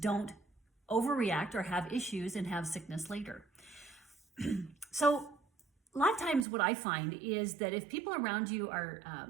overreact or have issues and have sickness later. So a lot of times what I find is that if people around you are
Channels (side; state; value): left; drops out; at 6.5 s